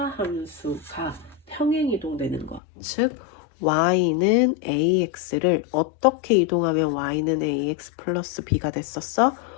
함수가 평행이동되는 것, 즉 y는 ax를 어떻게 이동하면 y는 ax 플러스 b가 됐었어?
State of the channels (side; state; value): right; drops out; at 2.6 s